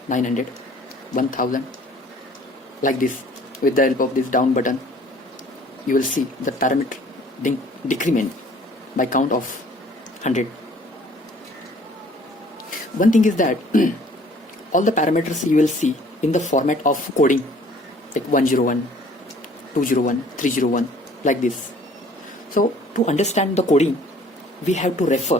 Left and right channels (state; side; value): normal; both; correlation 0.55